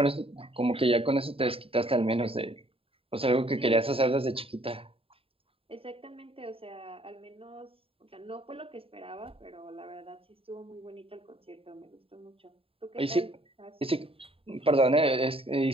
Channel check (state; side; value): late; left; 0.27 ms